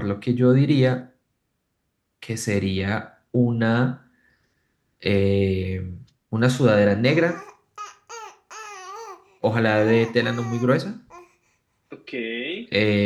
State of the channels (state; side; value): identical; both; correlation 1.00